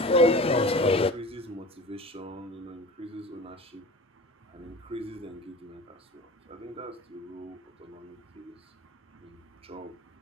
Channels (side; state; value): both; normal; correlation 0.37